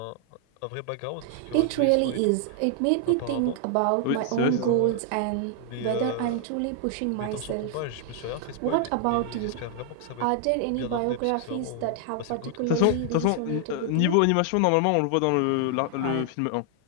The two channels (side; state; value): both; different; correlation 0.00